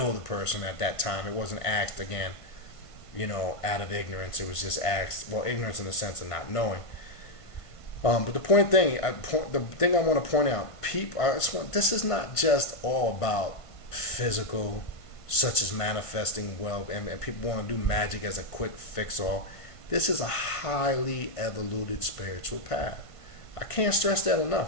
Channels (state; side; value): late; right; 1.5 ms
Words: the person at that time. It wasn't asked again, out of ignorance. It was just asked, well, ignorance in the sense of not knowing. But the thing I want to point out, this is not just all about physical, such as manifesting wealth, and people want to do magic as a quick fix-all. This is a highly evoluted spiritual path. I can't stress that